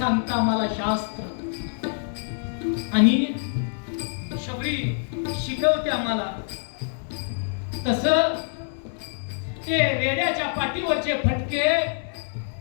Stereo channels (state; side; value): silent; right; 61 dB below the other